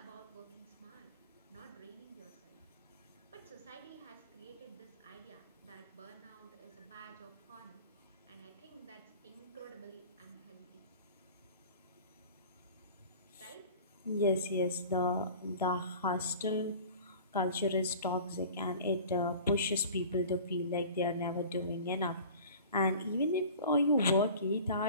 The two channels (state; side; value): inverted; both; correlation -0.41